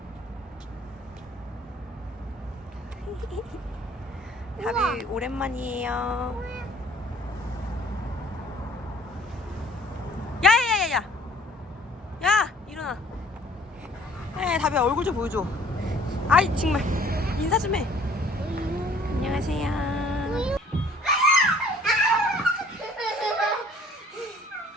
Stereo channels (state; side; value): normal; both; correlation 0.55